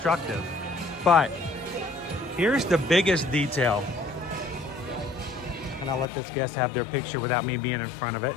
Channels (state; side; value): drops out; right; at 6.1 s